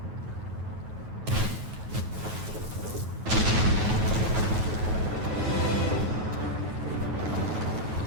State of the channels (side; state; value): left; late; 9.3 ms